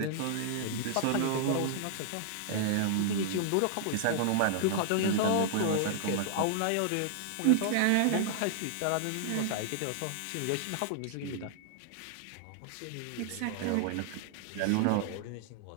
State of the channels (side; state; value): both; different; correlation -0.01